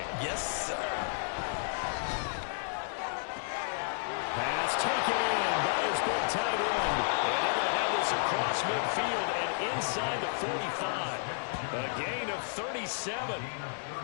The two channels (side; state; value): right; silent; 56 dB below the other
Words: Yes, sir. Pass taken in by his big tight end. And they're going to have this across midfield and inside the 45. A gain of 37.